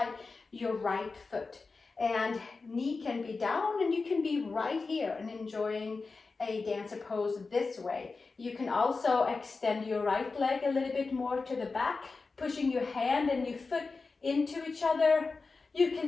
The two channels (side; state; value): right; quieter; 4.1 dB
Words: your right foot, and knee can be down and you can be right here and enjoying a dancer pose this way. You can also extend your right leg a little bit more to the back, pushing your hand and your foot into each other. You